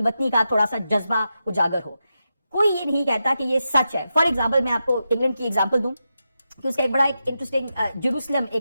کا تھوڑا سا جذبہ اجاگر ہو. کوئی یہ نہیں کہتا کہ یہ سچ ہے. فار ایگزامپل میں آپ کو انگلینڈ کی ایگزامپل دوں کہ اس کا ایک بڑا ایک انٹرسٹنگ جیروسلم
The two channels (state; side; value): inverted; both; correlation -0.88